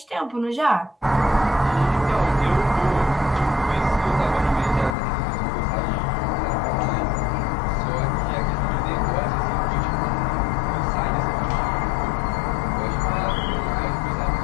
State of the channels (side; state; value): right; drops out; at 5.0 s